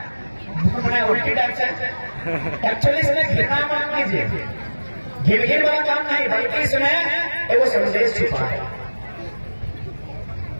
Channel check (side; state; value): both; inverted; correlation -1.00